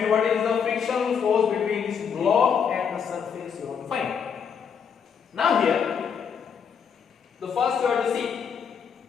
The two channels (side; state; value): right; quieter; 7.0 dB